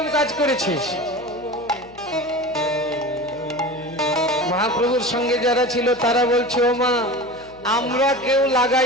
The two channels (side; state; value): left; noise; hum, 24 dB below the sound